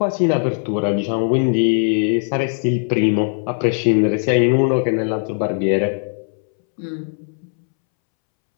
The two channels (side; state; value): right; silent; 66 dB below the other